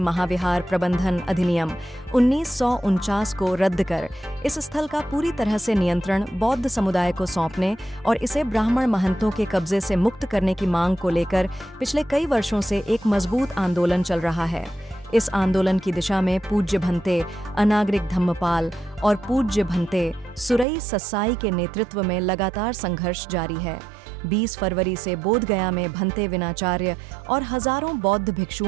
प्रबंधन अधिनियम 1949 को रद्द कर इस स्थल का पूरी तरह से नियंत्रण बौद्ध समुदाय को सौंपने और इसे ब्राह्मण महंतों के कब्जे से मुक्त करने की मांग को लेकर पिछले कई वर्षों से एक मजबूत आंदोलन चल रहा है। इस आंदोलन की दिशा में पूज्य भंते अनागरिक धम्मपाल और पूज्य भंते सुरई ससाई के नेतृत्व में लगातार संघर्ष जारी है। 20 फरवरी से बोध गया में भंते विनाचार्य और हजारों बौद्ध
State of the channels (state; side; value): drops out; left; at 20.7 s